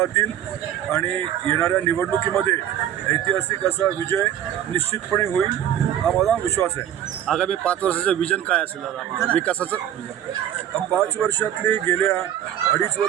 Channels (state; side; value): quieter; left; 10.9 dB